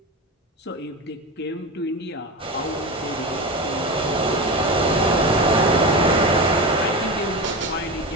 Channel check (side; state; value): both; normal; correlation 0.23